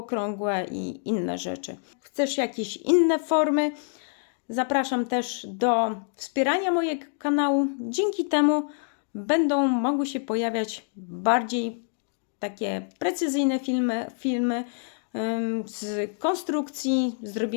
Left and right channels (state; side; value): silent; right; digital silence